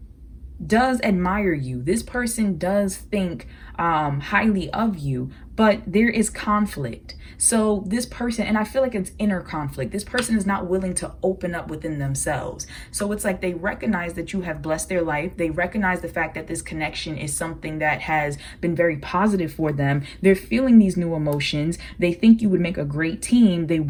does admire you. This person does think highly of you, but there is conflict. So this person, and I feel like it's inner conflict. This person is not willing to open up within themselves. So it's like they recognize that you have blessed their life. They recognize the fact that this connection is something that has been very positive for them. They're feeling these new emotions. They think you would make a great team. They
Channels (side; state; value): both; identical; correlation 1.00